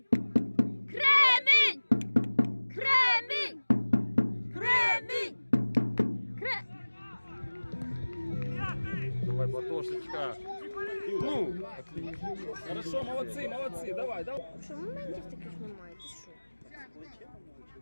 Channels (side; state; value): both; inverted; correlation -1.00